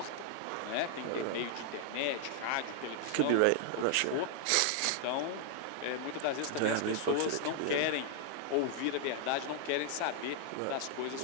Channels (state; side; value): different; both; correlation 0.00